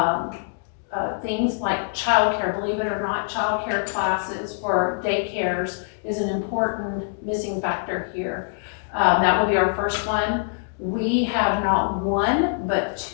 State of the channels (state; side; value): silent; right; digital silence